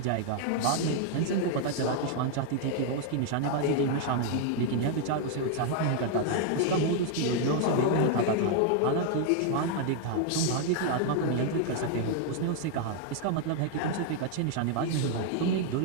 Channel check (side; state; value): both; different; correlation 0.00